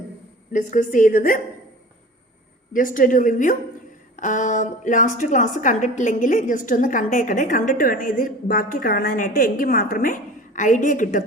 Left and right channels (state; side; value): normal; both; correlation 0.40